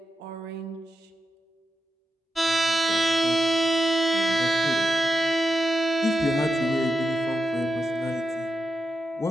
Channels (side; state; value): both; normal; correlation 0.87